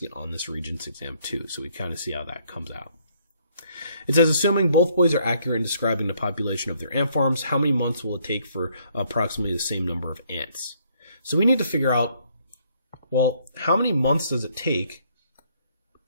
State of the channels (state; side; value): inverted; both; correlation -0.67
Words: it on this Regents exam too, so we kind of see how that comes out. It says, assuming both boys are accurate in describing the population of their ant farms, how many months will it take for approximately the same number of ants? So we need to figure out Well, how many months does it take